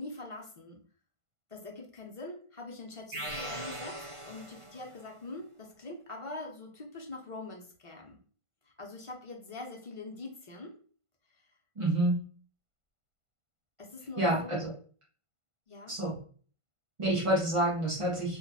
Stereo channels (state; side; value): late; left; 1.5 ms